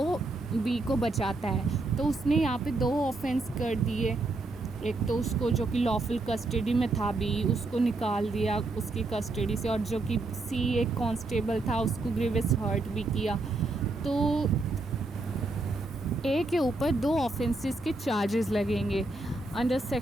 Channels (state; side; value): quieter; left; 3.1 dB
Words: बी को बचाता है। तो उसने यहाँ पे 2 ऑफेंस कर दिए, एक तो उसको जो कि लॉफुल कस्टडी में था बी, उसको निकाल दिया उसकी कस्टडी से, और जो कि सी एक कांस्टेबल था उसको ग्रीवियस हर्ट भी किया। तो ए के ऊपर 2 ऑफेंसेस के चार्जेस लगेंगे under